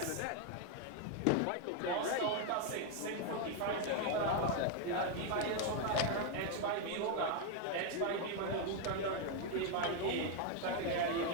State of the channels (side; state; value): both; different; correlation 0.01